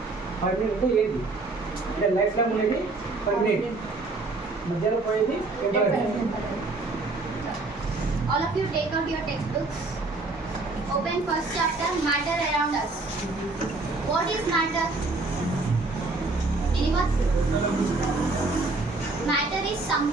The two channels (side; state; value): left; quieter; 3.4 dB